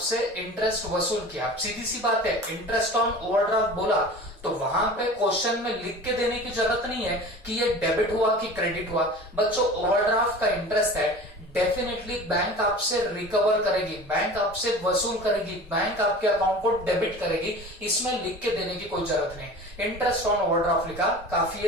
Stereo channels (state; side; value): normal; both; correlation 0.38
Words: इंटरेस्ट वसूल किया। सीधी सी बात है, इंटरेस्ट ऑन ओवरड्राफ्ट बोला तो वहां पे क्वेश्चन में लिख के देने की जरूरत नहीं है कि ये डेबिट हुआ कि क्रेडिट हुआ। बच्चों, ओवरड्राफ्ट का इंटरेस्ट है, डेफिनेटली बैंक आपसे रिकवर करेगी, बैंक आपसे वसूल करेगी, बैंक आपके अकाउंट को डेबिट करेगी, इसमें लिख के देने की कोई जरूरत नहीं। इंटरेस्ट ऑन ओवरड्राफ्ट लिखा काफी